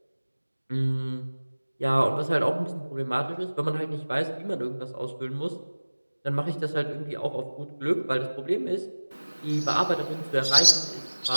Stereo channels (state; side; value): inverted; both; correlation -1.00